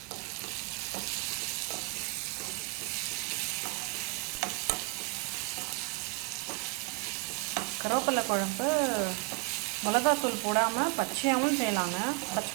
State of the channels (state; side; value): quieter; left; 32.8 dB